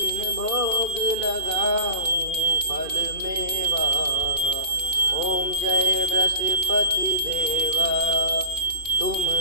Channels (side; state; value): left; late; 2.6 ms